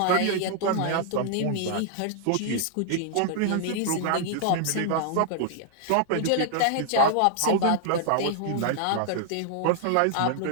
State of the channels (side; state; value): both; different; correlation 0.00